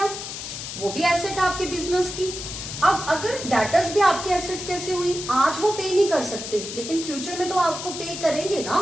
वो भी एसेट है आपके बिजनेस की। अब अगर डेटर्स भी आपके एसेट्स कैसे हुई? आज वो पे नहीं कर सकते, लेकिन फ्यूचर में तो आपको पे करेंगे ना,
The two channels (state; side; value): noise; left; hiss, 8 dB below the sound